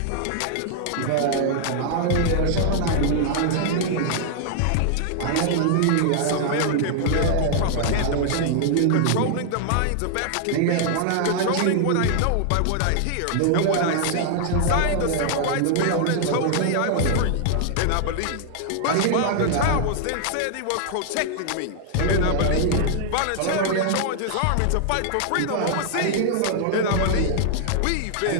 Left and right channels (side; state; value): both; different; correlation 0.00